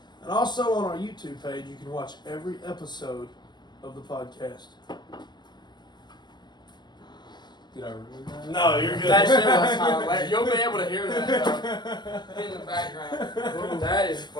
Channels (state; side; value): late; right; 0.21 ms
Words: And also on our YouTube page, you can watch every episode of the podcast. Did I ruin that? No, you're good. That shit was hilarious. You'll be able to hear that in the background. That is